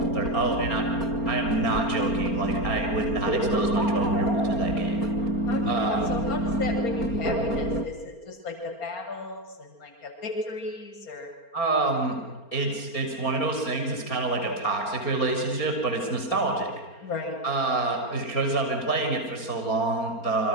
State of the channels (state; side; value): late; right; 4.3 ms